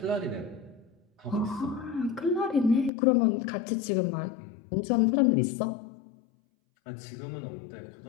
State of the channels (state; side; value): drops out; right; at 2.9 s